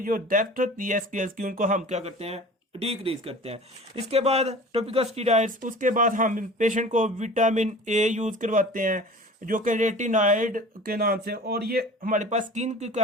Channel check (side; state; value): both; normal; correlation 0.41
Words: जो डेप्थ होती है स्केल्स की उनको हम क्या करते हैं, डिक्रीज करते हैं। इसके बाद टॉपिकल स्टीरॉइड्स, उसके बाद हम पेशेंट को विटामिन ए यूज करवाते हैं जो कि रेटिनॉइड के नाम से, और ये हमारे पास स्किन की